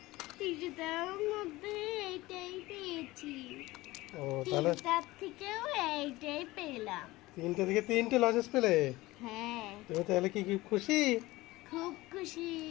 তৃতীয়টার মধ্যে এইটাই পেয়েছি। ও, তাহলে তিনটার থেকেও এইটাই পেলাম। 3টে থেকে 3টে লজেন্স পেলে। হ্যাঁ, তুমি তাহলে কি খুশি? খুব খুশি।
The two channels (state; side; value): quieter; right; 19.3 dB